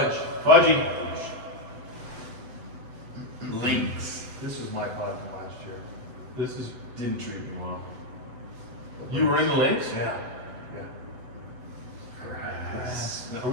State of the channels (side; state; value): left; late; 8.0 ms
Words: Fudgy. Links. This was my pod from last year. This is. Didn't treat me well. You were in the links? Yeah. Are